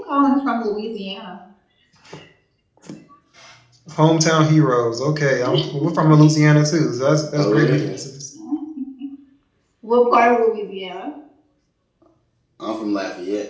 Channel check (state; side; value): identical; both; correlation 1.00